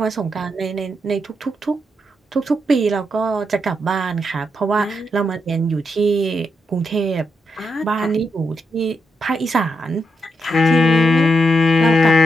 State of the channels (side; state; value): both; normal; correlation 0.82